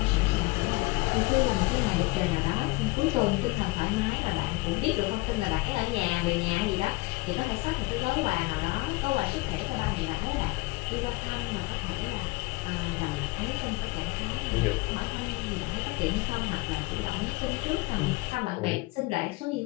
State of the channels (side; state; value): right; quieter; 23.0 dB